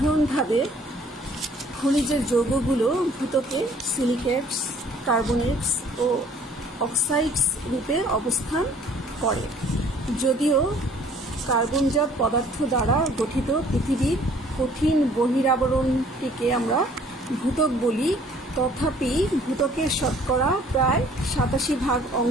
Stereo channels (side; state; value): both; normal; correlation 0.56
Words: খনিজের যৌগগুলো ভূত্বকে সিলিকেটস, কার্বনেটস ও অক্সাইডস রূপে অবস্থান করে। যদিও কার্বনজাত পদার্থ দ্বারা গঠিত পৃথিবীর কঠিন বহিরাবরণটিকে আমরা ভূত্বক বলি, তথাপি ভূত্বকের শতকরা প্রায় 87%